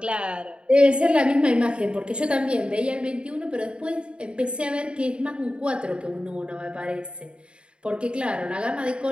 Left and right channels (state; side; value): late; left; 0.055 ms